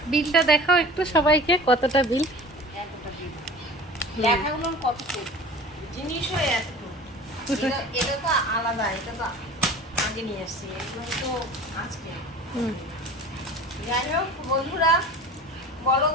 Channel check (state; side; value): normal; both; correlation 0.40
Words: বিলটা দেখাও একটু সবাইকে, কতটা বিল? এতটা বিল, লেখাগুলো কতটুকু, জিনিসও এতটুকু। এটা তো আলাদা, এটা তো আগে নিয়ে আসছি, এগুলো তো আজকে। যাই হোক বন্ধুরা, বলো